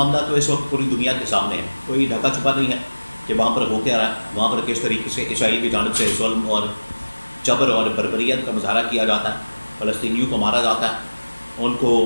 تو اس وقت پوری دنیا کے سامنے ہے، کوئی ڈھکا چھپا نہیں ہے کہ وہاں پر ہو کیا رہا ہے، وہاں پر کس طریقے سے اسرائیل کی جانب سے ظلم اور جبر اور بربریت کا مظاہرہ کیا جاتا ہے، فلسطینیوں کو مارا جاتا ہے، ان کو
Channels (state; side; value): inverted; both; correlation -1.00